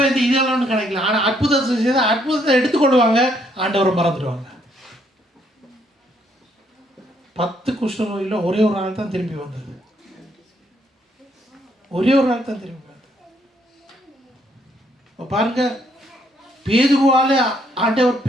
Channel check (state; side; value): normal; both; correlation 0.70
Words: இந்த இதெல்லாம் ஒன்றும் கிடைக்கல. ஆனால் அற்புதத்தை செய்த அற்புதத்தை எடுத்துக்கொள்வாங்க, ஆண்டவரை மறந்துடுவாங்க. 10 குஷ்ட நோயில் ஒரே ஒரு ஆள் தான் திரும்பி வந்தது. ஒரே ஒரு ஆள் தான் திரும்பி வந்தது. பாருங்க, பேதுருவால ஆண்டவர்